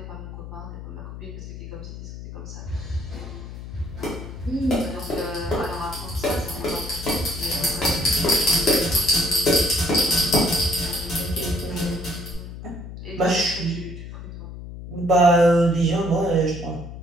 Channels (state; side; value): noise; left; hum, 11 dB below the sound